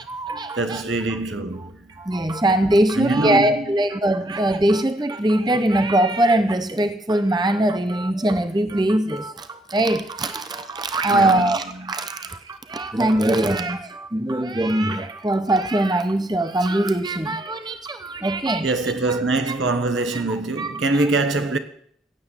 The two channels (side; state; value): both; normal; correlation 0.68